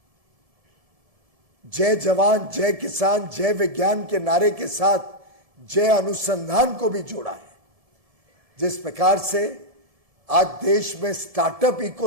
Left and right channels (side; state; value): left; late; 1.7 ms